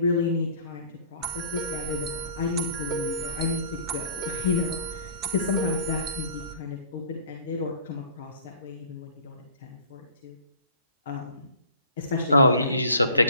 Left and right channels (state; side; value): inverted; both; correlation -0.49